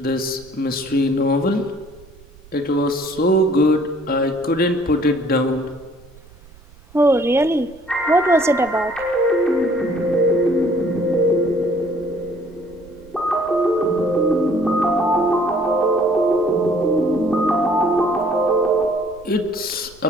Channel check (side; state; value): right; noise; rumble, 24 dB below the sound